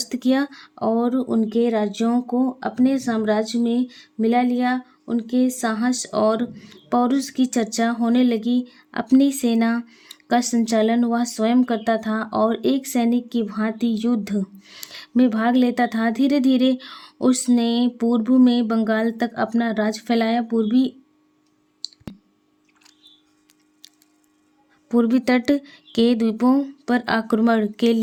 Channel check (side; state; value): both; identical; correlation 1.00